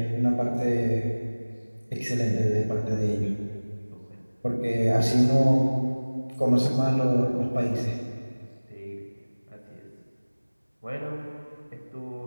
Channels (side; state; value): both; inverted; correlation -1.00